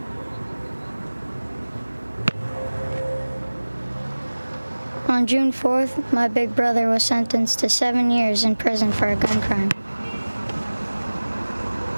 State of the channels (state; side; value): inverted; both; correlation -1.00